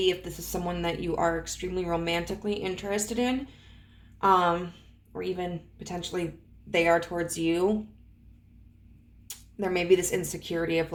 if this is someone that you are extremely romantically interested in, or even potentially they are towards you, there may be this insecurity of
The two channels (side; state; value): both; identical; correlation 1.00